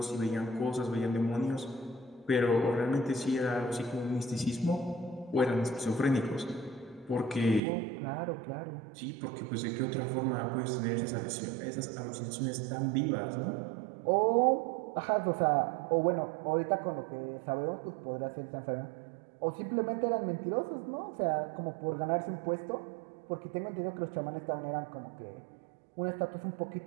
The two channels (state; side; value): drops out; left; at 7.6 s